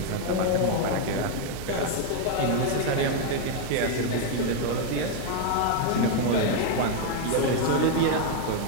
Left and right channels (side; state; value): both; different; correlation 0.00